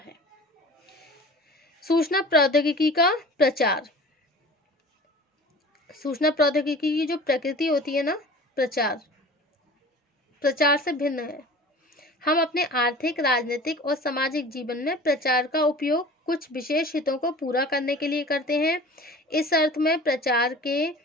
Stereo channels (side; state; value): both; normal; correlation 0.41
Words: सूचना प्रौद्योगिकी का प्रचार। सूचना प्रौद्योगिकी की जो प्रकृति होती है ना, प्रचार से भिन्न है। हम अपने आर्थिक, राजनीतिक और सामाजिक जीवन में प्रचार का उपयोग कुछ विशेष हितों को पूरा करने के लिए करते हैं। इस अर्थ में प्रचार